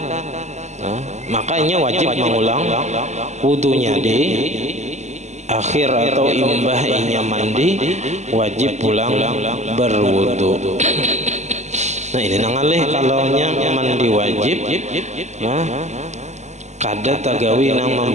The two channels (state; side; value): late; left; 0.33 ms